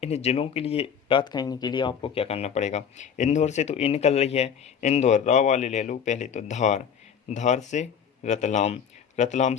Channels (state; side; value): quieter; right; 7.6 dB